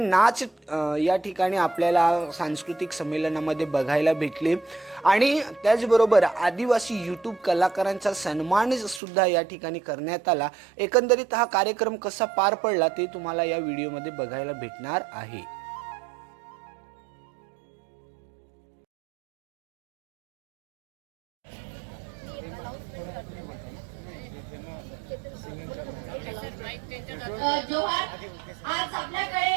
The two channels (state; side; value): drops out; left; at 9.0 s